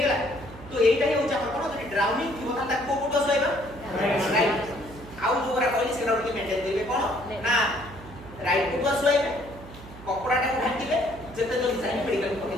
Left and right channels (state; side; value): noise; right; hum, 17 dB below the sound